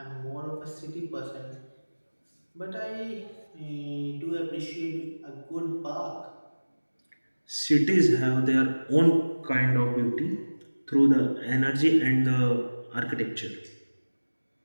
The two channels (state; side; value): inverted; both; correlation -1.00